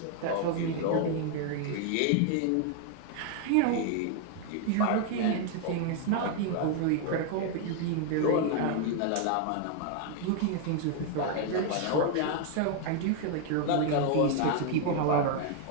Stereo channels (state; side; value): different; both; correlation 0.00